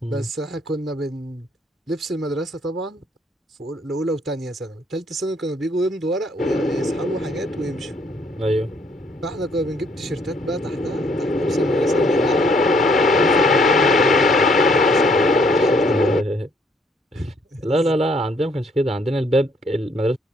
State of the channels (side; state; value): both; normal; correlation 0.66